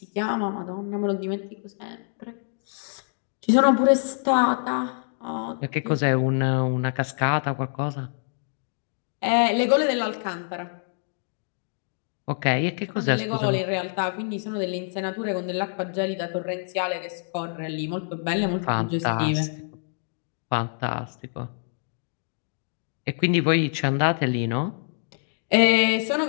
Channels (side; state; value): right; silent; digital silence